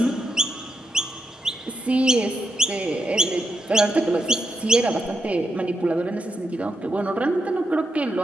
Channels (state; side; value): normal; both; correlation 0.83